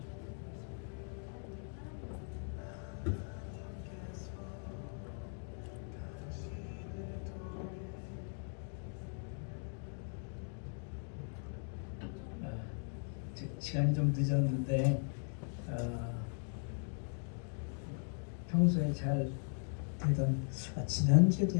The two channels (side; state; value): right; silent; 52 dB below the other